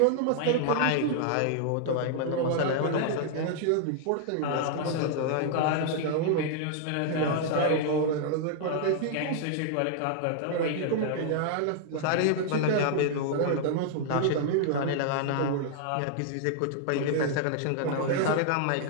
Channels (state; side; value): different; both; correlation -0.01